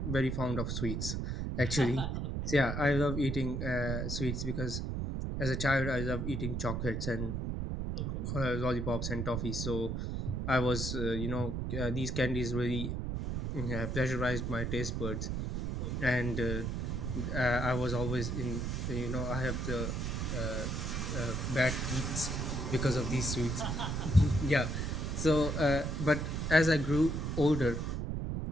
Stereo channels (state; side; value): noise; right; rumble, 2 dB below the sound